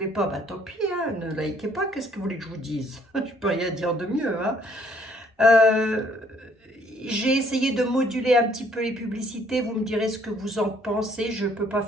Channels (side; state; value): both; normal; correlation 0.63